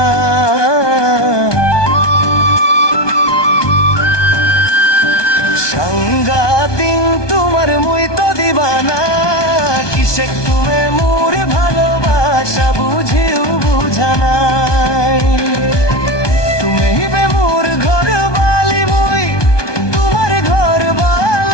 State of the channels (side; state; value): right; late; 1.2 ms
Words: সাংগাতিন তোমার মুই তো দিবানা। কিসে তুমি মোর ভালোবাসা বুঝিও বুঝানাই। তুমি বে মোর ঘর বালি মুই তোমার ঘর